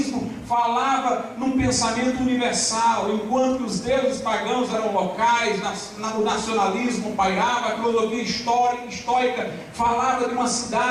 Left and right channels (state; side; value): identical; both; correlation 1.00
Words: falava num pensamento universal, enquanto os deuses pagãos eram locais, o nacionalismo pairava. A filosofia estoica falava de uma